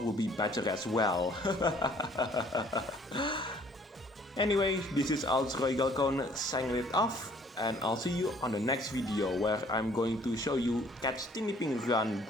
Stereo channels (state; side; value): normal; both; correlation 0.59